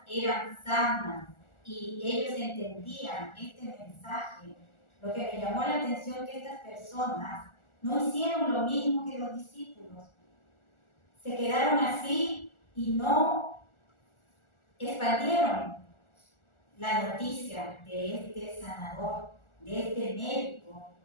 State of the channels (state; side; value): late; right; 1.4 ms